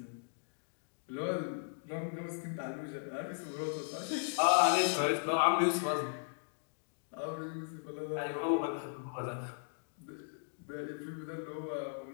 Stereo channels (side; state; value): right; silent; digital silence